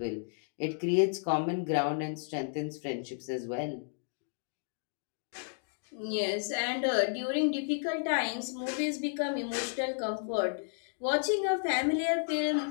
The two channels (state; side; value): silent; right; digital silence